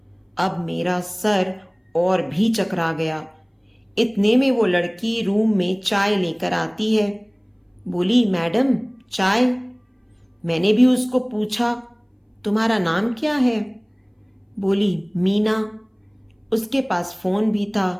अब मेरा सर और भी चकरा गया। इतने में वो लड़की रूम में चाय लेकर आती है। बोली, मैडम चाय। मैंने भी उसको पूछा, तुम्हारा नाम क्या है? बोली, मीना। उसके पास फोन भी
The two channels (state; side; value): identical; both; correlation 1.00